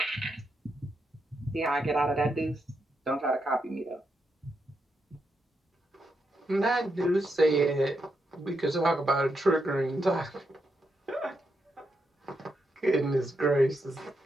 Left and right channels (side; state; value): both; normal; correlation 0.83